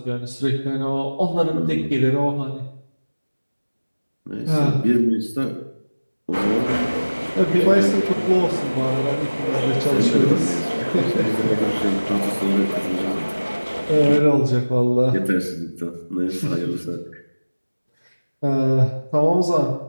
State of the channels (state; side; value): inverted; both; correlation -1.00